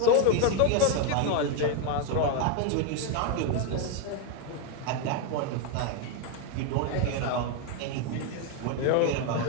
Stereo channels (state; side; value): different; both; correlation 0.01